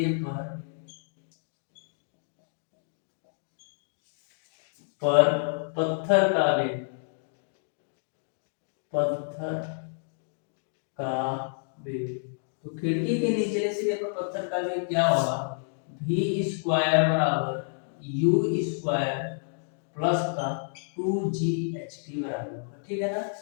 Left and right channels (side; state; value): right; silent; digital silence